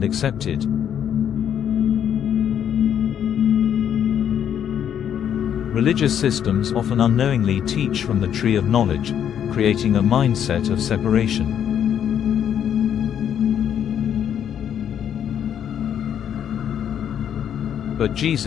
accepted. Religious systems often unknowingly teach from the tree of knowledge, creating a mindset of separation. But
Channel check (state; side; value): quieter; right; 9.2 dB